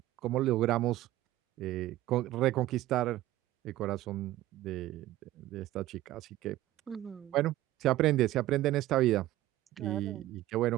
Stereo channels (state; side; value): quieter; left; 15.4 dB